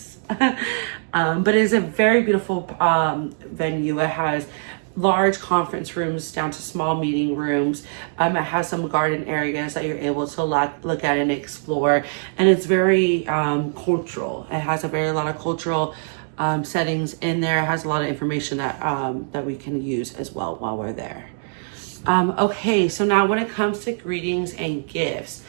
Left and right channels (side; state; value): left; silent; digital silence